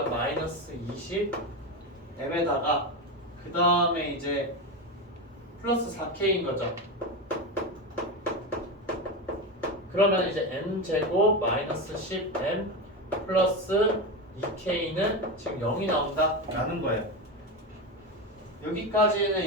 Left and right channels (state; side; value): normal; both; correlation 0.17